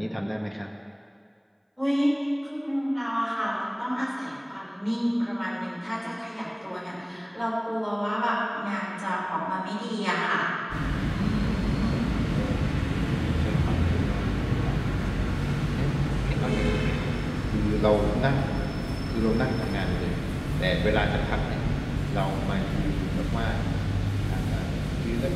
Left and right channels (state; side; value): identical; both; correlation 1.00